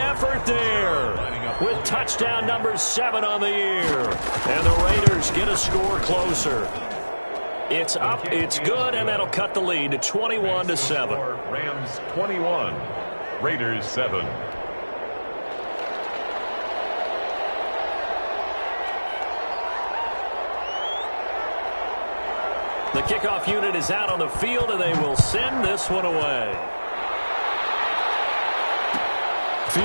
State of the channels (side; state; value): both; inverted; correlation -1.00